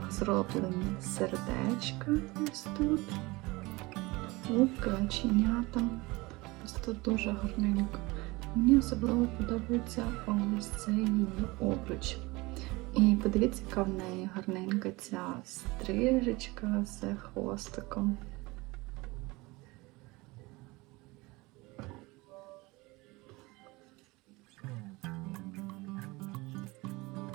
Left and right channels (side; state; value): left; quieter; 22.9 dB